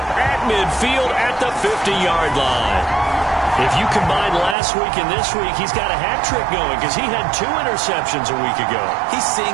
at midfield at the 50-yard line. If you combine last week and this week, he's got a hat trick going because he had 2 interceptions a week ago. He's seeing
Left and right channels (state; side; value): drops out; left; at 4.5 s